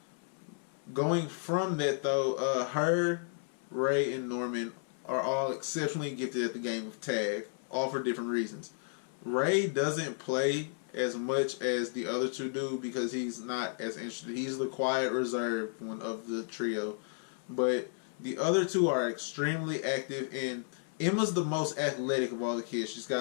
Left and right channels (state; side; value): silent; right; 56 dB below the other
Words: Going from that, though, her, Ray, and Norman are all exceptionally gifted at the game of tag, all for different reasons. Ray doesn't play as much as the other two do because he's not as interested. He's the quiet, reserved one of the trio. But the other two are extremely active, and Emma's the most athletic of all the kids. She's